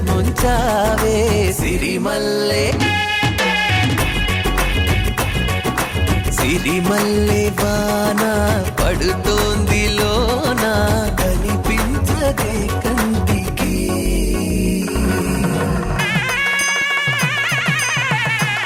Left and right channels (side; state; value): both; identical; correlation 1.00